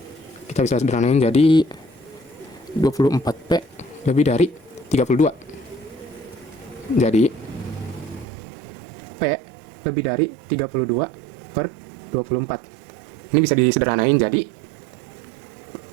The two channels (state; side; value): drops out; left; at 8.2 s